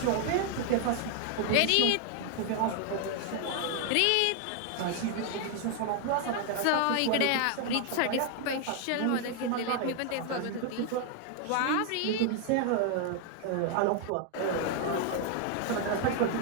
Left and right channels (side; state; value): both; different; correlation 0.00